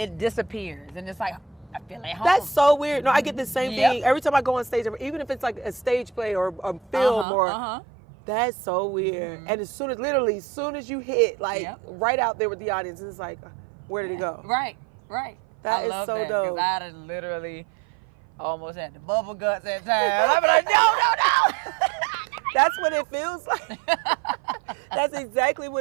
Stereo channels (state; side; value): drops out; left; at 7.2 s